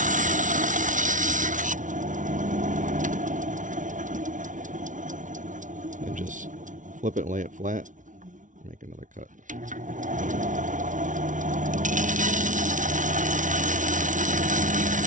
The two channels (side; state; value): left; late; 0.37 ms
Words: And just flip it and lay it flat. Make another cut.